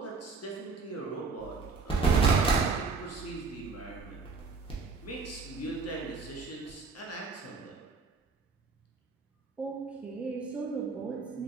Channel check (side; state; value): left; quieter; 4.4 dB